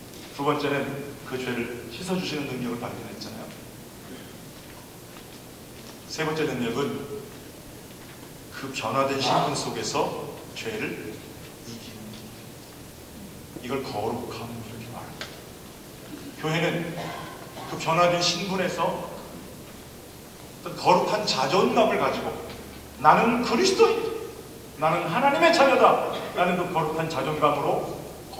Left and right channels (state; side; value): identical; both; correlation 1.00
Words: 두 번째는 그 죄를 씻어주시는 능력을 발견했잖아요. 세 번째 능력은 그 변화된 신분 속에서 죄를 이기는, 이걸 거룩함 이렇게 말합니다. 교회는 그 변화된 신분에서 어떤 거룩한 자존감을 가지고 나는 그리스도인, 나는 하나님의 자녀다, 나는 그 거룩한 자존감으로